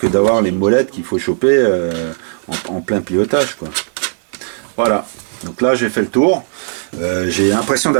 d'avoir les molettes qu'il faut choper en plein pilotage, quoi. Voilà. Donc là, j'ai fait le tour. J'ai l'impression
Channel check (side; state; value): left; silent; 69 dB below the other